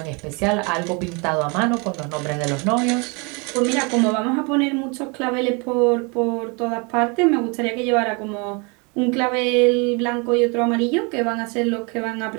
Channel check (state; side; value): quieter; left; 31.1 dB